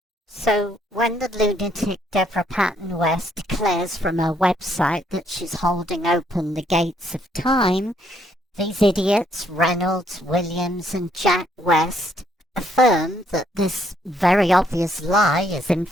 So when the lunatic Devra Patton West declares from her website that she's holding open the gates of time, these idiots, Reynolds, Williams, and Jack West, affirm that this very obvious lie is in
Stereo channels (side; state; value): both; normal; correlation 0.70